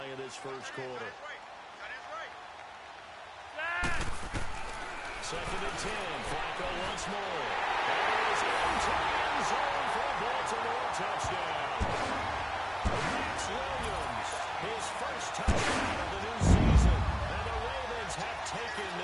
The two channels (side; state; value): both; identical; correlation 1.00